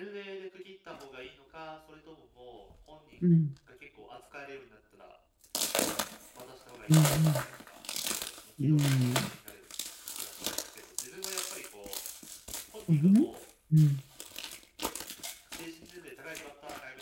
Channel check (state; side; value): identical; both; correlation 1.00